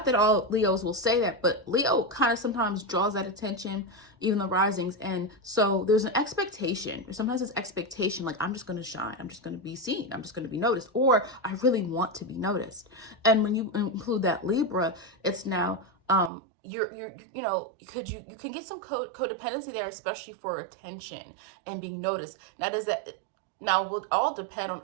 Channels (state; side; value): drops out; left; at 16.3 s